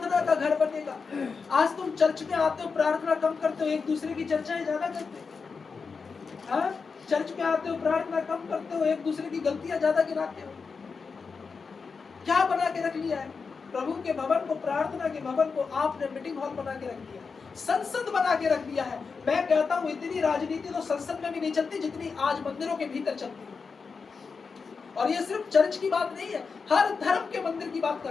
का घर बनेगा। आज तुम चर्च में आते हो, प्रार्थना कम करते हो, एक दूसरे की चर्चाएं ज्यादा करते हो। हाँ, चर्च में आते हो, प्रार्थना कम करते हो, एक दूसरे की गलतियां ज्यादा गिनाते हो। क्या बना के रख लिया है? प्रभु के भवन को, प्रार्थना के भवन को आपने मीटिंग हॉल बना के रख दिया, संसद बना के रख दिया है। मैं कहता हूं इतनी राजनीति तो संसद में भी नहीं चलती जितनी आज मंदिरों के भीतर चलती है। और ये सिर्फ चर्च की बात नहीं है, हर धर्म के मंदिर की बात कर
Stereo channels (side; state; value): right; quieter; 5.0 dB